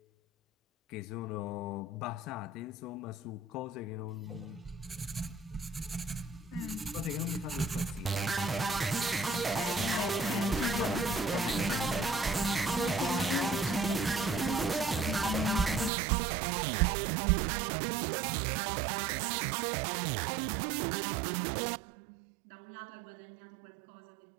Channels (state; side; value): drops out; left; at 15.9 s